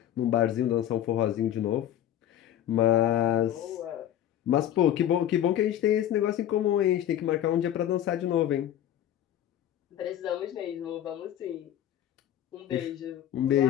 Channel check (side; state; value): right; quieter; 11.4 dB